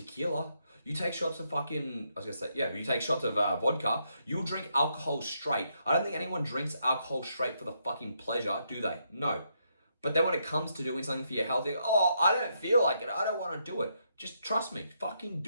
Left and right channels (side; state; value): both; inverted; correlation -0.77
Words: You take shots of you take shots of vodka. You'll drink alcohol straight. I don't think anyone drinks alcohol straight for the fucking pleasure, do they? No. But then when it comes to doing something for your health, oh, I don't feel like it. I don't want to do it. Just trust me, fucking